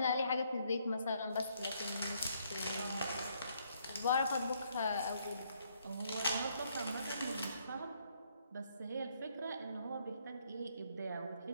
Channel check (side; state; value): both; inverted; correlation -0.70